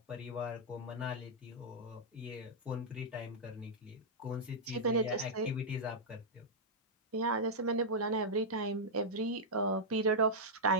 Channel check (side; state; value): both; normal; correlation -0.07